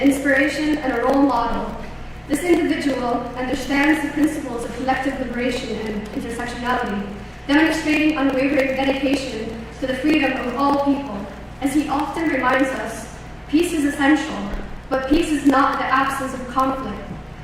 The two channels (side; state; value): both; identical; correlation 1.00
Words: and a role model. This individual understands the principles of collective liberation and intersectionality, demonstrating unwavering dedication to the freedom of all people. As he often reminds us, peace is essential, but peace is not the absence of conflict.